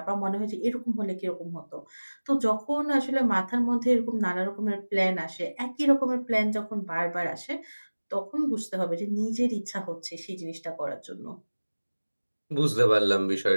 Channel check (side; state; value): both; inverted; correlation -1.00